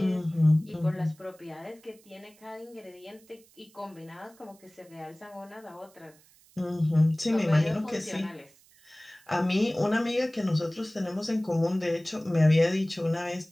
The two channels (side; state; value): right; noise; hiss, 28 dB below the sound